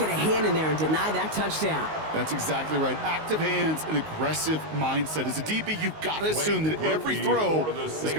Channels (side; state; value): left; late; 19 ms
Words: a hand in there and deny that touchdown. That's exactly right. Active hands and aggressive mindset. As a DB, you've got to assume that every throw is